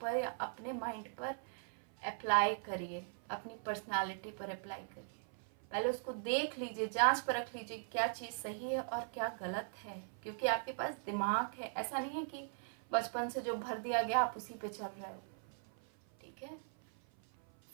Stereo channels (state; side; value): silent; left; 51 dB below the other